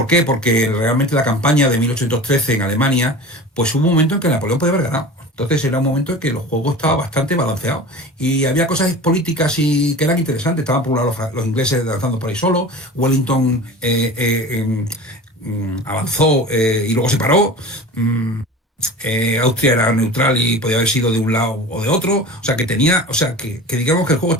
qué? Porque realmente la campaña de 1813 en Alemania, pues hubo un momento en que Napoleón podía haber ganado. Entonces era un momento en que los juegos estaban bastante balanceados y había cosas políticas y que eran interesantes. Estaban por un lado los ingleses lanzando por ahí solo, Wellington avanzó y luego se paró. Mm, Austria era neutral y podía haber sido de un lado o de otro, o sea que tenía, o sea que digamos que el juego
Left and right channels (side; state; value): both; normal; correlation 0.35